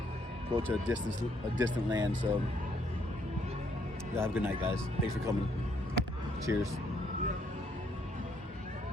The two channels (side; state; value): both; normal; correlation 0.70